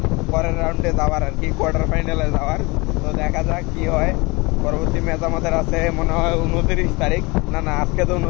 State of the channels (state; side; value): quieter; right; 25.6 dB